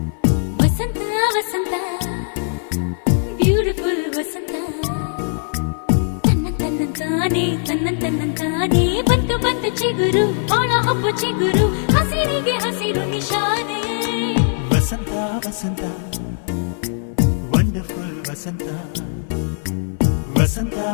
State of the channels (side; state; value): right; silent; 59 dB below the other